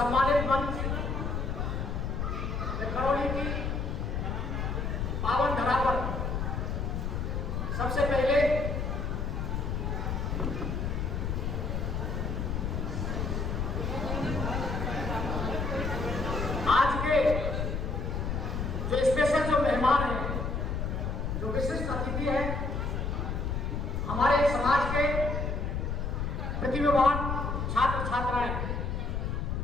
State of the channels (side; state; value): left; noise; rumble, 1 dB below the sound